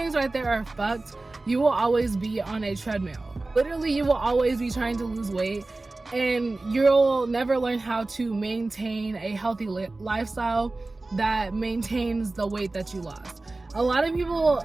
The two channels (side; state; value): left; quieter; 3.1 dB